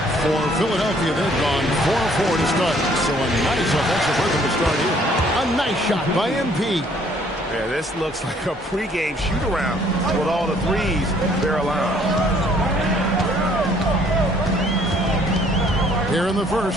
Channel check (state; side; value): normal; both; correlation 0.61